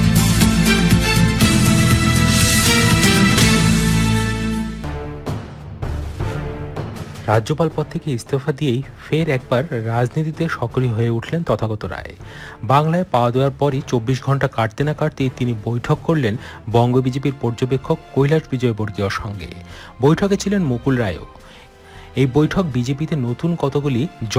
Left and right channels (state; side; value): identical; both; correlation 1.00